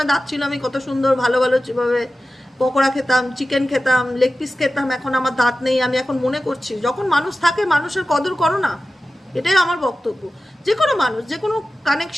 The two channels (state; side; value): normal; both; correlation 0.95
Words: দাঁত ছিল, আমি কত সুন্দর ভালো ভালো যেভাবে পকোড়া খেতাম, চিকেন খেতাম, লেগ পিস খেতাম। এখন আমার দাঁত নেই, আমি এখন মনে করছি যখন মানুষ থাকে মানুষের কদর করো না, এটাই আমার বক্তব্য। যে কোনো মানুষ, যে কোনো